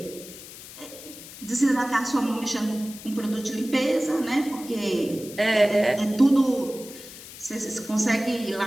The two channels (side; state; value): left; noise; hiss, 15 dB below the sound